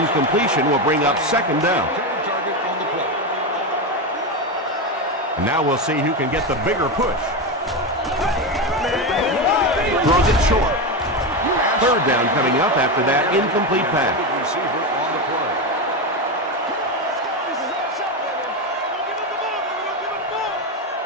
will bring up second down. And now we'll see who can get the bigger push. Throws it short. Third down coming up after that incomplete pass.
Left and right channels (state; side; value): normal; both; correlation 0.14